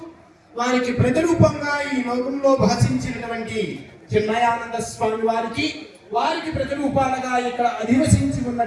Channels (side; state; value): both; identical; correlation 1.00